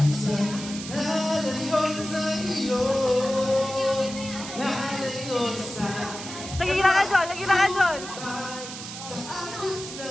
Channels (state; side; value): noise; right; hiss, 10 dB below the sound